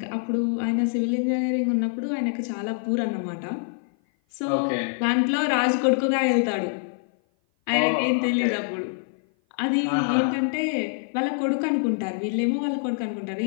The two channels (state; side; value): silent; right; 56 dB below the other